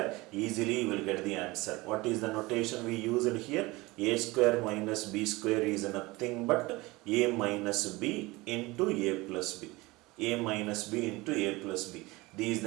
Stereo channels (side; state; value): left; quieter; 21.9 dB